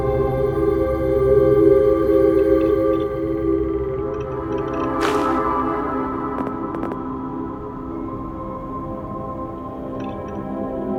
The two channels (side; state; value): both; identical; correlation 1.00